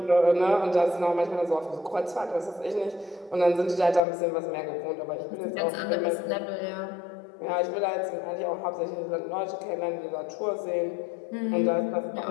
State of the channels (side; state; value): right; drops out; at 4.0 s